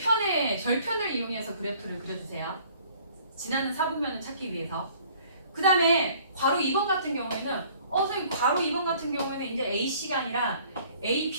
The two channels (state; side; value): inverted; both; correlation -0.55